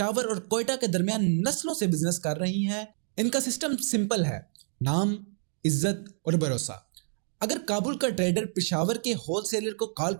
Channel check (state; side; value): silent; left; digital silence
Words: और कोयटा के दरमियान नस्लों से बिजनेस कर रही हैं। इनका सिस्टम सिंपल है, नाम, इज्जत और भरोसा। अगर काबुल का ट्रेडर पेशावर के होलसेलर को कॉल